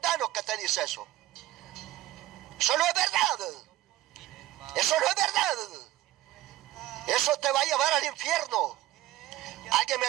que te dice eso. Eso no es verdad. Eso no es verdad. Eso te va a llevar al infierno. Alguien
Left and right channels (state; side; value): quieter; left; 15.1 dB